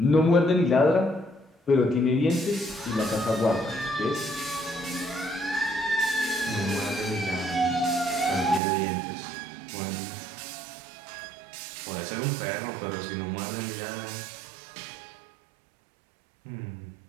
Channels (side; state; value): left; drops out; at 8.6 s